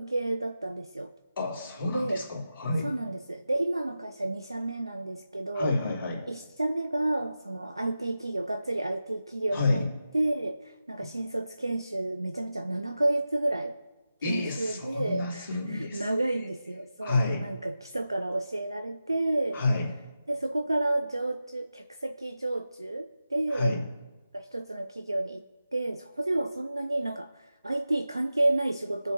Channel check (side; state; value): both; inverted; correlation -0.92